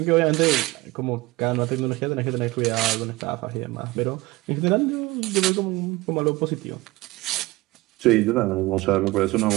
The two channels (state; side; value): quieter; left; 20.5 dB